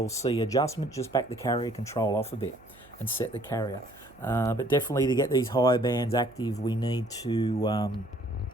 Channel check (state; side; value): noise; right; hum, 25 dB below the sound